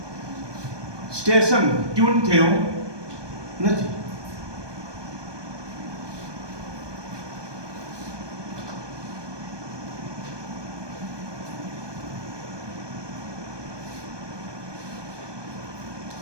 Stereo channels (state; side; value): late; left; 1.2 ms